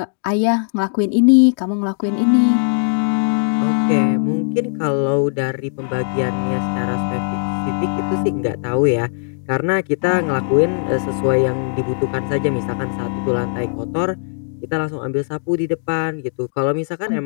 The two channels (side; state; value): right; silent; digital silence